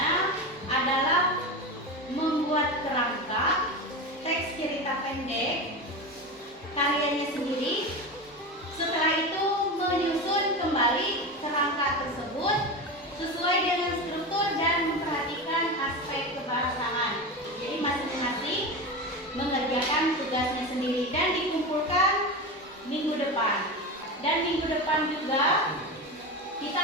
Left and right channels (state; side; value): normal; both; correlation 0.23